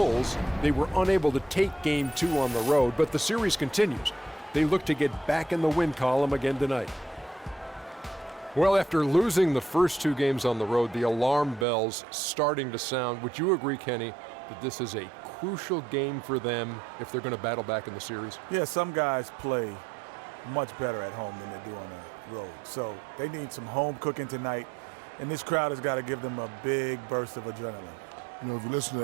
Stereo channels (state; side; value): drops out; left; at 11.7 s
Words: they were unable to take Game 2 on the road, but the series continues. They look to get back in the win column again tonight. Well, after losing the first two games on the road, the alarm bells starting to sound. Would you agree, Kenny, that this is a crucial game for them if they're going to battle back in the series? Yeah, some guys play much better at home than they do on the road. So they need some home cooking tonight, and this crowd has got to give them a big burst of adrenaline. You know, if you listen to